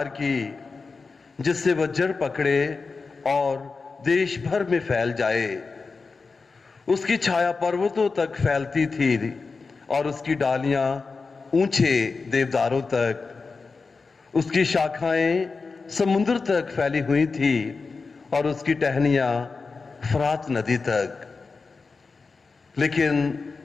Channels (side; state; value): right; quieter; 4.4 dB